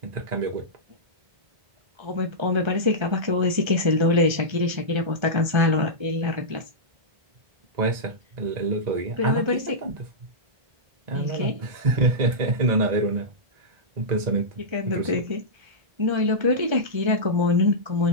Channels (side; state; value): left; late; 1.3 ms